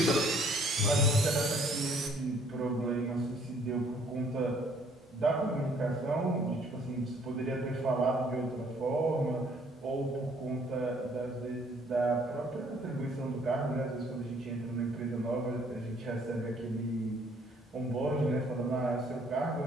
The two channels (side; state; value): both; normal; correlation 0.61